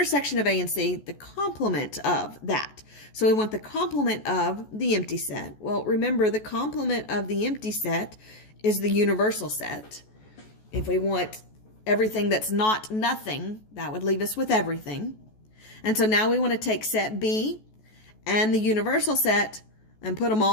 A and C, the complement of that. So we want the complement of the empty set. Well, remember, the complement of the empty set is the universal set. If we want everything that's not nothing, that would leave us with everything. And so now we want to take set B and the universal set and put them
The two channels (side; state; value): right; late; 14 ms